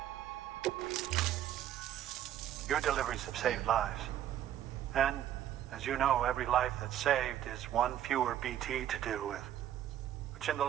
Your deliveries have saved lives. And, as you know, every life that's saved is one fewer BT to deal with. Which in the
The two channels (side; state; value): left; quieter; 11.4 dB